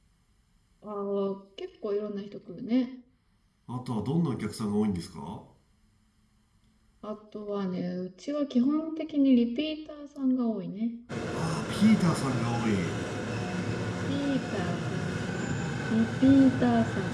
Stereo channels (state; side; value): identical; both; correlation 1.00